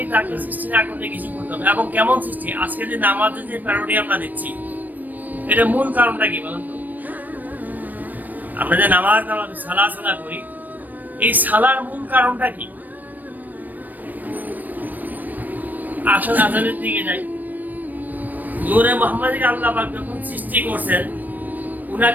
তাকে সৃষ্টি না করতে কিছু করতে হবে। এবং কেমন সৃষ্টি? আজকে যে নামাজের যে প্যারোডি আমরা দিচ্ছি, এটা মূল কারণটা কি বলুন তো? আমরা যে নামাজ সালা করি, এই সালার মূল কারণটা কি? আসলের দিকে যাই। নূরে মুহাম্মদকে আল্লাহ পাক যখন সৃষ্টি করছেন,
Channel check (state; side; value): late; left; 0.086 ms